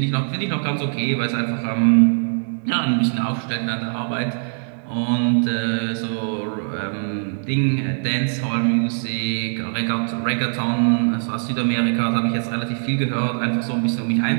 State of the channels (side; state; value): left; silent; digital silence